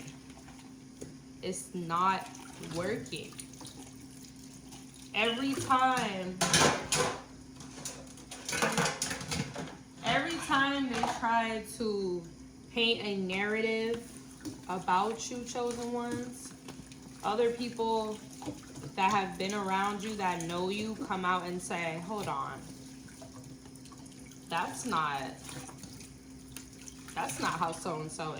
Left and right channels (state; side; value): identical; both; correlation 1.00